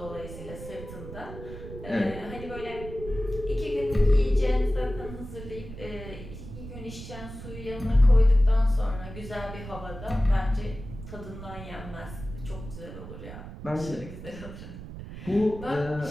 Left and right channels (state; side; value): noise; right; rumble, 12 dB below the sound